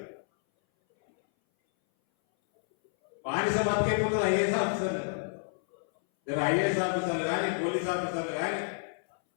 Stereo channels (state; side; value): silent; right; 58 dB below the other